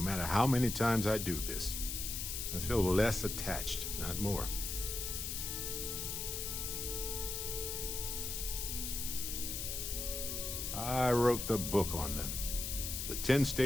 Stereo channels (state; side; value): noise; left; hiss, 3 dB below the sound